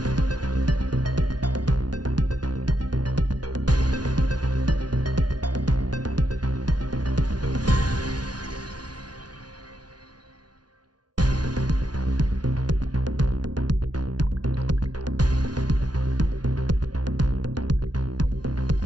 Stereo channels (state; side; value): late; left; 0.69 ms